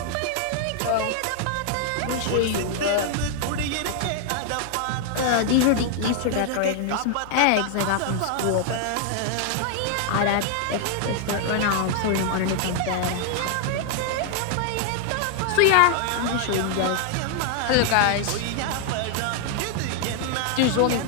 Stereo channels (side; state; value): both; different; correlation 0.00